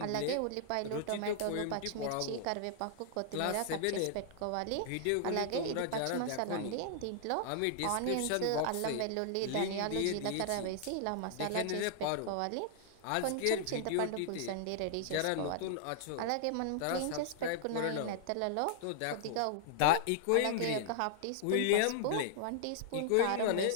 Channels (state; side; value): different; both; correlation -0.01